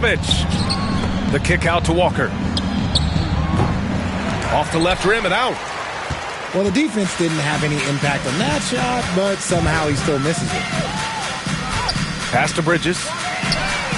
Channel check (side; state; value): both; identical; correlation 1.00